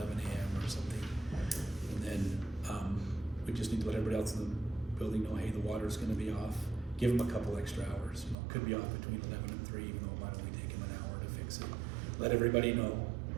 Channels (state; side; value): drops out; left; at 8.3 s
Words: a.m. or something. And then, we just need to let everybody else in the building know, hey, the water's gonna be off, give them a couple extra hours, could be off between 11 and 3, even though it might only take them an hour to fix it. Let everybody know.